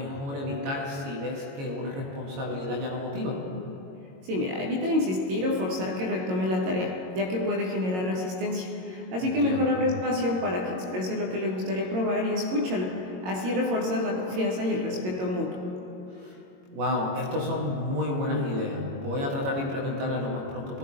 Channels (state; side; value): late; left; 22 ms